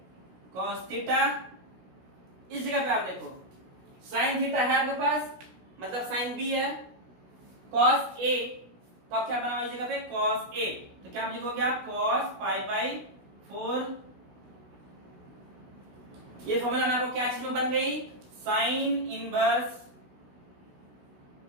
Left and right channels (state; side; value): late; left; 16 ms